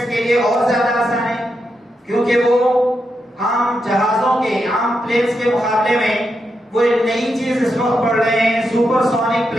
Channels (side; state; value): both; normal; correlation 0.84